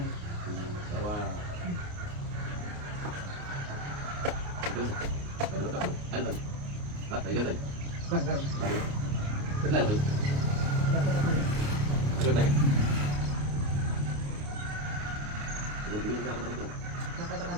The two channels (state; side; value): late; left; 29 ms